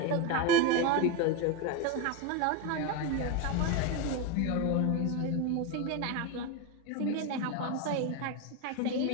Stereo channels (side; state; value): both; different; correlation 0.03